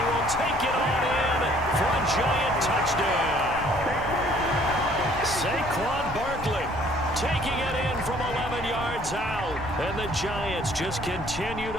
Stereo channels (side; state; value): left; noise; rumble, 12 dB below the sound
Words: will take it on in for a giant touchdown. Saquon Barkley taking it in from 11 yards out, and the Giants just continue